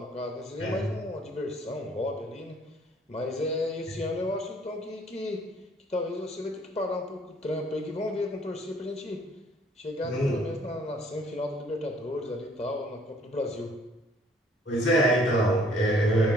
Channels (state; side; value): normal; both; correlation 0.59